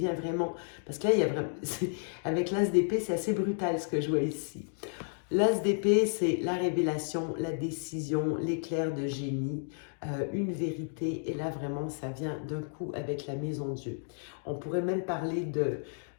vraiment? Parce que là, il y a vraiment... Avec l'as d'épée, c'est assez brutal ce que je vois ici. L'as d'épée, c'est la révélation, la décision, l'éclair de génie, une vérité. Et là, vraiment, ça vient d'un coup avec la maison Dieu. On pourrait même parler de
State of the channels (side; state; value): right; silent; digital silence